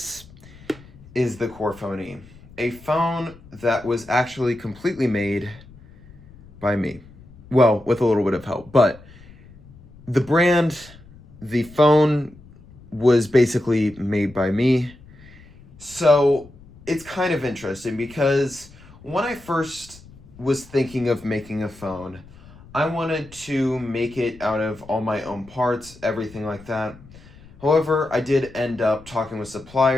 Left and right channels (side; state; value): left; noise; rumble, 22 dB below the sound